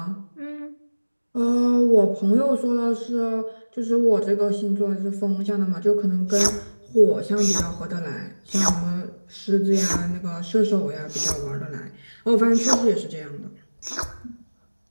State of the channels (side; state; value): both; inverted; correlation -1.00